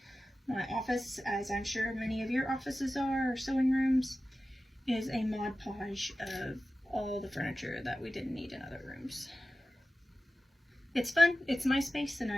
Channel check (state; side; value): normal; both; correlation 0.95